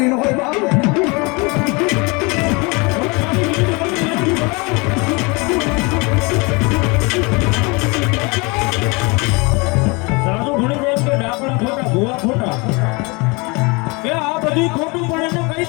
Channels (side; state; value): right; quieter; 28.0 dB